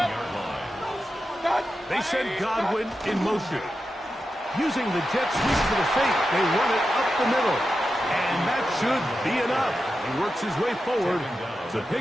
line. They send Godwin in motion. Using the jet sweep for the fake, they run it up the middle. And that should be enough. He works his way forward to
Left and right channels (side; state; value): both; normal; correlation 0.90